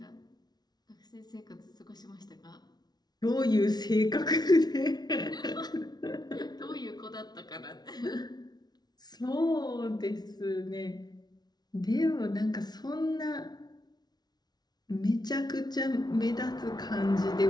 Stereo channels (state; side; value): late; right; 0.19 ms